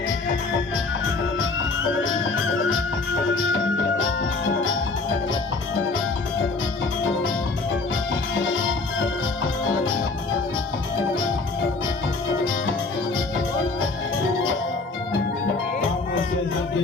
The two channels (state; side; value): quieter; right; 3.8 dB